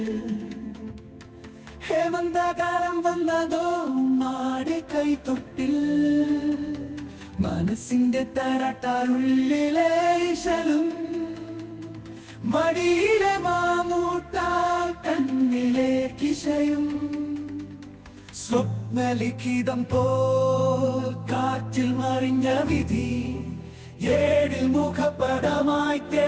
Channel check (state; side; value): identical; both; correlation 1.00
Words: ഹേമന്തകാലം വന്നതോ മാടി കൈത്തൊട്ടിൽ. മനസ്സിന്റെ തരട്ടാറുള്ളിലെ ഇശലും, മടിയിലെ മാമൂട്ടാൽ കണ്ണിലെ കിശയും. സ്വപ്നലിഖിതം പോൽ കാറ്റിൽ മറിഞ്ഞ വിധി, ഏഴിൽ മുഖപടമായി